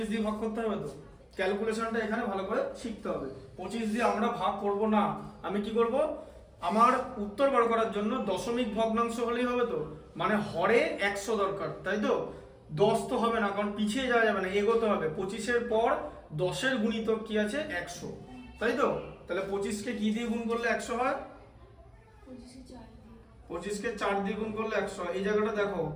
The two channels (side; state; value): both; identical; correlation 1.00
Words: দিয়ে ভাগ করতে হবে, তো ক্যালকুলেশনটা এখানে ভালো করে শিখতে হবে। 25 দিয়ে আমরা ভাগ করব না, আমি কি করব? আমার উত্তর বার করার জন্য দশমিক ভগ্নাংশ হলেই হবে, তো মানে হরে 100 দরকার, তাই তো? 10 তো হবে না, কারণ পিছিয়ে যাওয়া যাবে না, এগোতে হবে। 25-এর পর 10-এর গুণিতক কি আছে? 100, তাই তো? তাহলে 25-কে কি দিয়ে গুণ করলে 100 হয়? 25-কে 4 দিয়ে গুণ করলে 100। এই জায়গাটা দেখো,